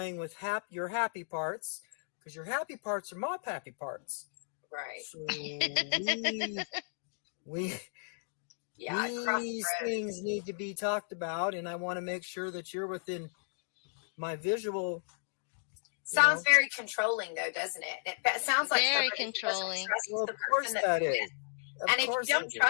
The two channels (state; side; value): silent; right; digital silence